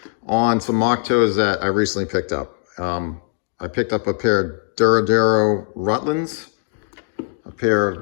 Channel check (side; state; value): right; silent; digital silence